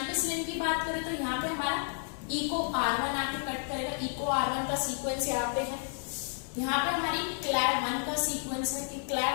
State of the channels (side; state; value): right; silent; 56 dB below the other